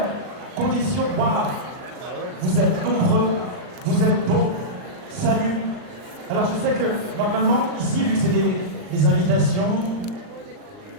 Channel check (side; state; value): left; late; 39 ms